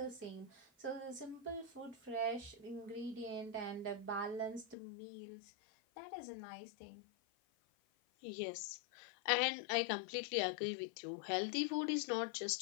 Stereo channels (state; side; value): drops out; right; at 4.8 s